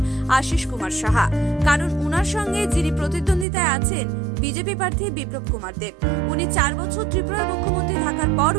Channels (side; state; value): left; drops out; at 3.5 s